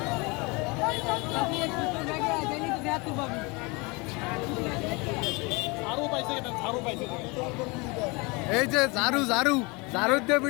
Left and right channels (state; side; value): quieter; right; 27.4 dB